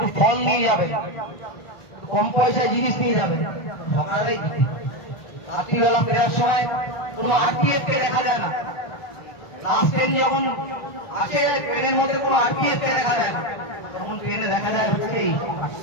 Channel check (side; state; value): right; late; 1.4 ms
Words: ফল নিয়ে যাবে, কম পয়সায় জিনিস নিয়ে যাবে, সকালেই রাত্রিবেলা ফেরার সময় কোনো আরপিএফ কে দেখা যায় না। লাস্ট ট্রেন যখন আসে ট্রেনের মধ্যে কোনো আরপিএফ কে দেখা যায় না, তখন ট্রেনে দেখা যায় হচ্ছে এই।